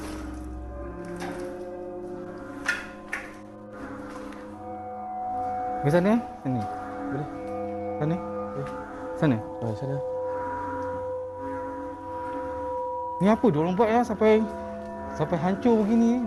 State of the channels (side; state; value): both; identical; correlation 1.00